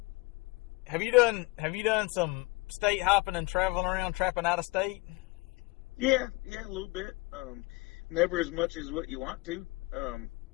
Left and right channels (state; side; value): quieter; right; 24.2 dB